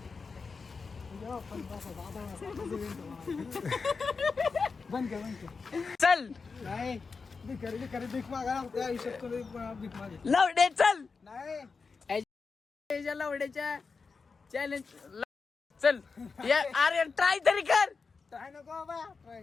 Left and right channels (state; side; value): quieter; right; 4.8 dB